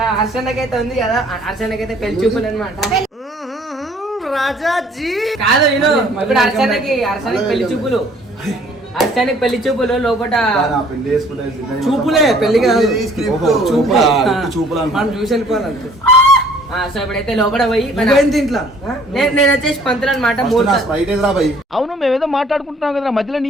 హర్షన్నకైతే ఉంది కదా, హర్షన్నకైతే పెళ్లి చూపులు అనమాట. రాజాజీ కాదు నేను ఇప్పుడు హర్షన్నకి పెళ్లి చూపులు, హర్షన్నకి పెళ్లి చూపులు లోపల చూపులే, పెళ్లి కాదు చూపులు మనం చూసి వెళ్ళిపోవాలంటే. సో ఇప్పుడైతే లోపల పోయి నేను వచ్చేసి పంతులు అనమాట. అవును, మేమేదో మాట్లాడుకుంటున్నాం కదా, మధ్యలో నీ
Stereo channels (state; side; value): normal; both; correlation 0.57